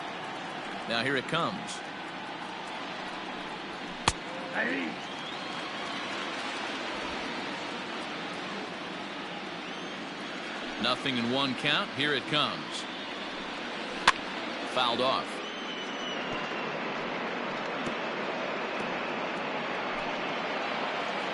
Now here it comes. Nothing in 1 count. Here it comes. Fouled off.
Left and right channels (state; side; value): noise; left; hum, 29 dB below the sound